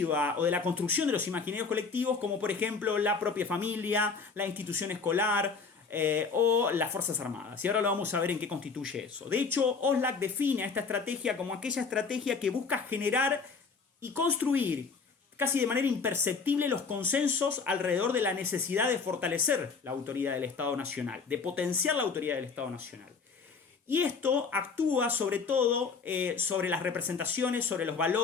o de la construcción de los imaginarios colectivos, como por ejemplo la propia familia, la institución escolar o las Fuerzas Armadas. Y ahora lo vamos a ver en qué constituye eso. De hecho, Oslak define a esta estrategia como aquella estrategia que busca generar y construir casi de manera imperceptible los consensos alrededor de la necesidad de fortalecer la autoridad del Estado Nacional, de potenciar la autoridad del Estado Nacional. Y esto actúa sobre todo sobre las representaciones, sobre los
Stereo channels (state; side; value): quieter; right; 5.0 dB